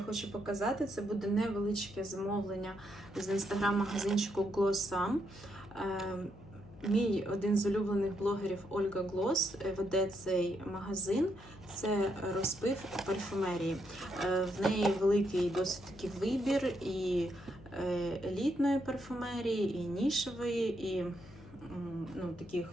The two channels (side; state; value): left; noise; hum, 20 dB below the sound